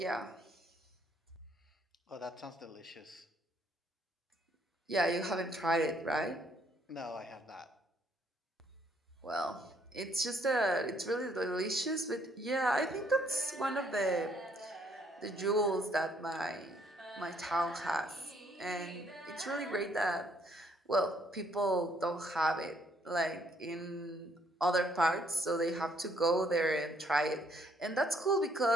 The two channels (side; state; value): both; normal; correlation 0.67